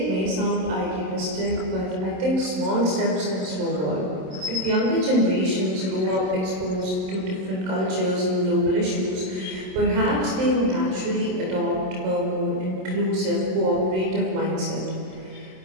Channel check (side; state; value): left; late; 27 ms